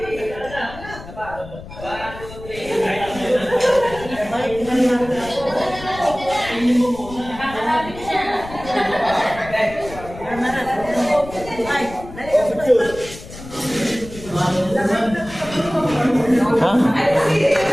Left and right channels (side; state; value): left; noise; rumble, 15 dB below the sound